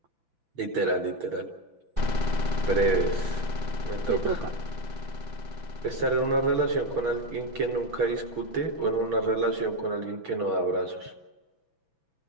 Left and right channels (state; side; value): late; left; 6.0 ms